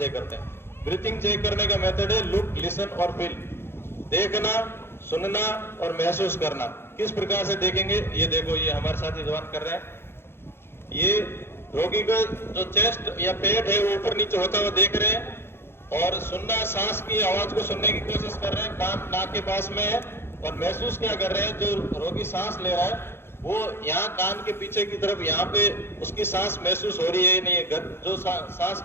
करते हैं। ब्रीथिंग चेक करने का मेथड है लुक, लिसन और फील। देखना, सुनना और महसूस करना। किस प्रकार से देखेंगे, ये देखो ये हमारे साथी जवान कर रहे हैं। ये रोगी को जो चेस्ट या पेट है वो ऊपर नीचे होता हुआ देख रहे हैं, और सुनना, सांस की आवाज को सुनने की कोशिश कर रहे हैं, कान नाक के पास में है, और महसूस क्या कर रहे हैं, जो रोगी सांस ले रहा है वो यहाँ कान के पीछे की तरफ यहाँ पे उसकी सांस महसूस हो रही है नहीं है, जो सांस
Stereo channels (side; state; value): right; late; 0.11 ms